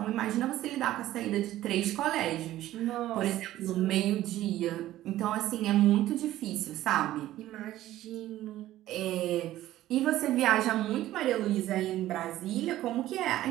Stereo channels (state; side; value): quieter; left; 14.4 dB